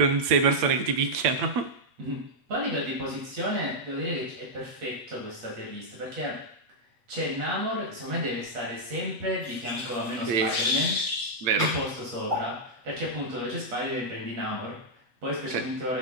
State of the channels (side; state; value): left; late; 8.1 ms